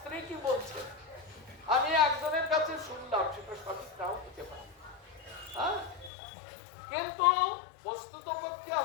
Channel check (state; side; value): drops out; right; at 6.1 s